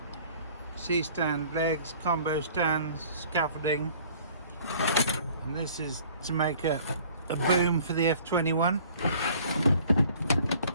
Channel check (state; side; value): inverted; both; correlation -0.52